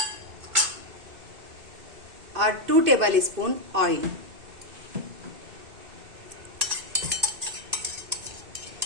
और 2 टेबल स्पून ऑयल।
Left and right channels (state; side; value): late; left; 2.6 ms